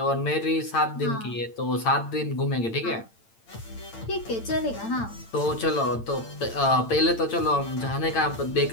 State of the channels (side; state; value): right; late; 8.8 ms